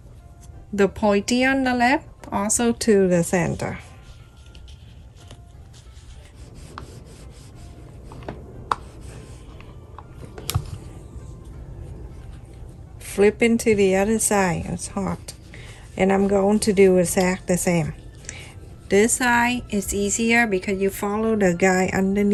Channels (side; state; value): both; identical; correlation 1.00